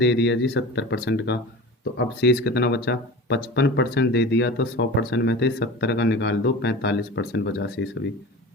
दिया जी 70% का। तो अब शेष कितना बचा, 55% दे दिया, तो 100% में से 70 का निकाल दो, 45% बचा शेष अभी,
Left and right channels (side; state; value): both; normal; correlation 0.34